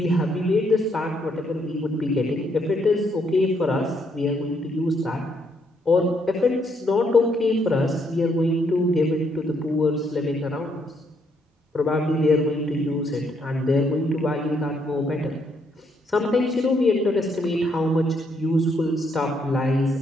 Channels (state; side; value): normal; both; correlation 0.73